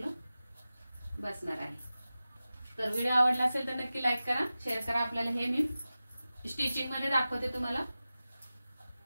बसणार आहे। तर व्हिडिओ आवडला असेल तर नक्की लाईक करा, शेअर करा। आपल्याला हे मी स्टिचिंग मध्ये दाखवते तुम्हाला।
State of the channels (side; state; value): both; inverted; correlation -0.95